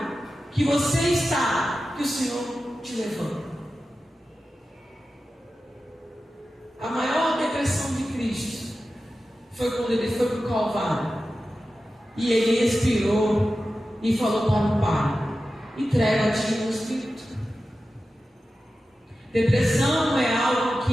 que você está que o Senhor te levanta. A maior depressão de Cristo foi quando ele foi para o Calvário e ele expirou e falou para o Pai: entrega a ti o Espírito. Depressão é algo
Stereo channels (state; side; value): normal; both; correlation 0.93